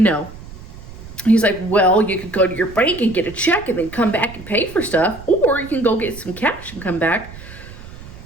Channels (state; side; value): noise; right; rumble, 16 dB below the sound